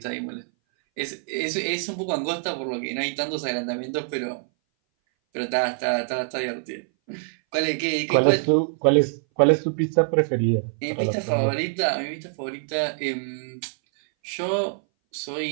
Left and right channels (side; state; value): left; silent; 59 dB below the other